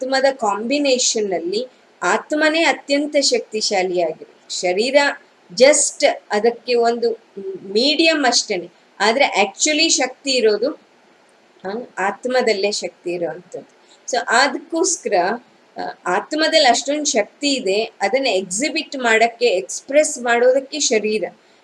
ಕಾಂಬಿನೇಷನ್ ಅಲ್ಲಿ ಆತ್ಮನೇ ಅತ್ಯಂತ ಶಕ್ತಿಶಾಲಿಯಾಗಿದೆ. ಶರೀರ ಜಸ್ಟ್ ಅದಕ್ಕೆ ಒಂದು ಮೀಡಿಯಂ ಅಷ್ಟೇನೆ, ಆದ್ರೆ ಆಕ್ಚುಲಿ ಶಕ್ತಿ ಇರೋದು ಆತ್ಮದಲ್ಲೇ ಶಕ್ತಿ ಇರೋವಂಥದ್ದು. ಸೊ ಅದಕ್ಕೋಸ್ಕರ ಆತ್ಮದಲ್ಲಿ ಅಷ್ಟೊಂದು ಶಕ್ತಿ ಇದೆ, ಅದನ್ನ ಎಕ್ಸಿಬಿಟ್ ಮಾಡಕ್ಕೆ, ಎಕ್ಸ್ಪ್ರೆಸ್ ಮಾಡೋದಕ್ಕೆ ಶರೀರ.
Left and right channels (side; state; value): both; identical; correlation 1.00